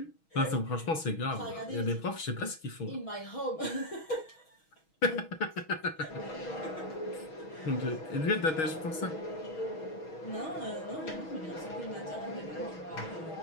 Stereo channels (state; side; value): late; right; 6.2 ms